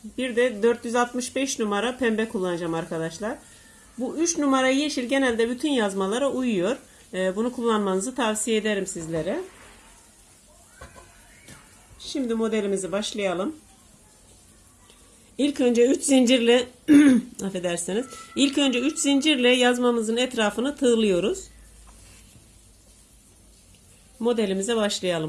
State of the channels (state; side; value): identical; both; correlation 1.00